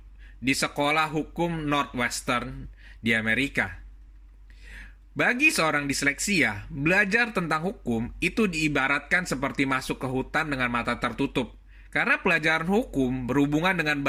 di sekolah hukum Northwestern di Amerika. Bagi seorang disleksia, belajar tentang hukum itu diibaratkan seperti masuk ke hutan dengan mata tertutup. Karena pelajaran hukum berhubungan dengan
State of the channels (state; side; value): identical; both; correlation 1.00